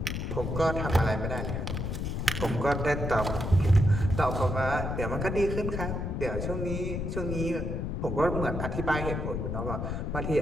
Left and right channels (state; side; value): noise; left; rumble, 3 dB below the sound